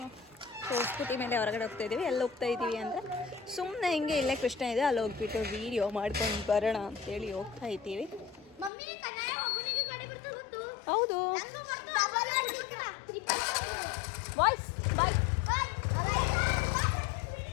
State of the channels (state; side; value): drops out; right; at 8.7 s